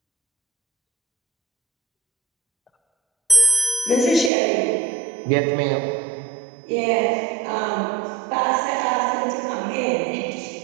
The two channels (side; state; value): left; drops out; at 4.3 s